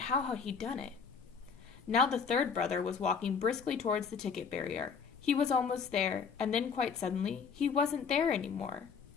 how had he done it? Now the third brother was walking briskly towards the ticket barrier. He was almost there, and then quite suddenly, he wasn't there anymore.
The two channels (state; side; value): quieter; right; 6.0 dB